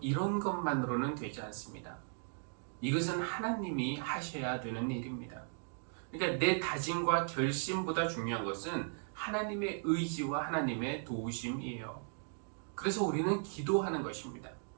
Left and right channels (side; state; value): left; silent; 53 dB below the other